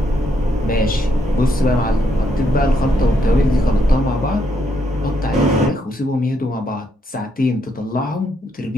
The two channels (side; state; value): both; normal; correlation 0.76